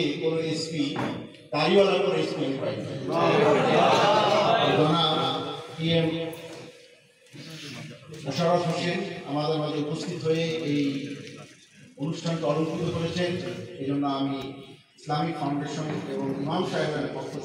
কোনো এসপি দাড়িওয়ালা কোনো এসপি পাইনি। PM মোশাররফ হোসেন আমাদের মাঝে উপস্থিত হয়ে এই অনুষ্ঠানকে অলঙ্কৃত করেছেন। এই জন্য আমি ইসলামিক ফাউন্ডেশন এবং ইমাম সাহেবের পক্ষ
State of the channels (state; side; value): identical; both; correlation 1.00